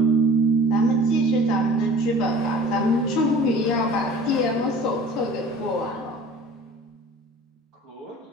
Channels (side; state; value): both; normal; correlation 0.45